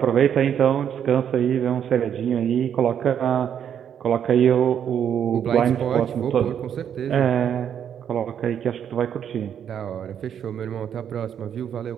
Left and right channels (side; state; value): left; quieter; 8.8 dB